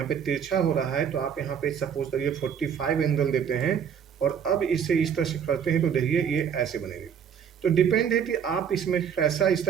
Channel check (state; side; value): quieter; left; 7.8 dB